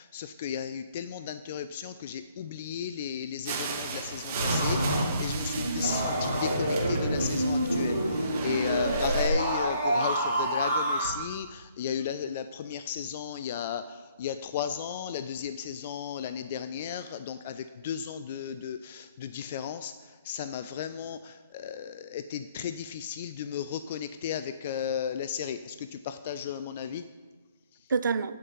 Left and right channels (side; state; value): both; inverted; correlation -0.63